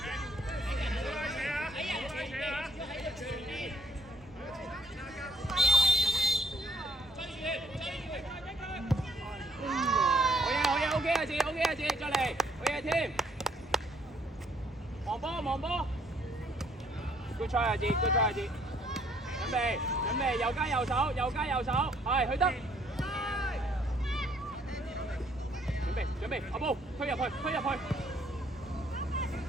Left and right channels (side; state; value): both; normal; correlation 0.66